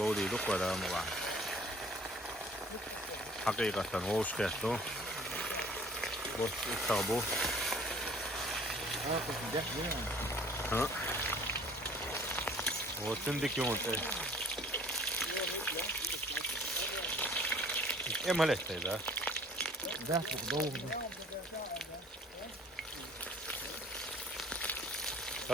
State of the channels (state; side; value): normal; both; correlation 0.52